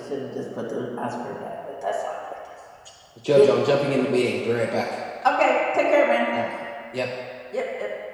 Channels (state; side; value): identical; both; correlation 1.00